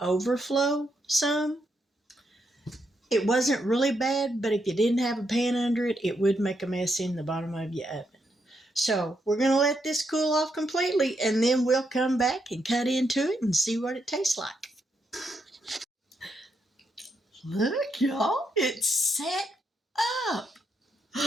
some. It wasn't really bad, but if you didn't have a pan under it, it would make a mess in the bottom of your oven. So we're going to let this cool off completely, and then we'll come back and cut into it and see what it tastes like. Look, y'all, it's set up.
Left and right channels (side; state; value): both; normal; correlation 0.80